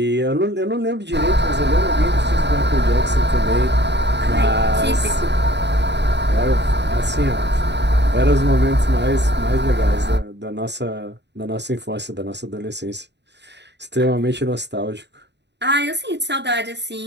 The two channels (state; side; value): late; left; 0.50 ms